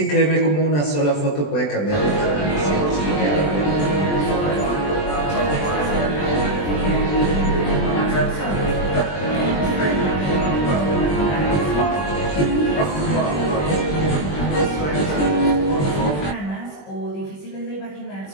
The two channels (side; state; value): right; late; 20 ms